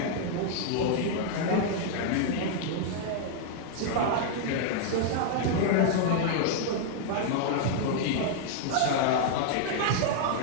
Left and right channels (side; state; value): both; different; correlation -0.01